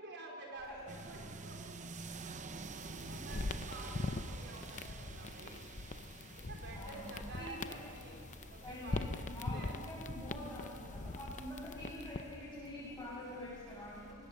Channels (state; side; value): normal; both; correlation 0.56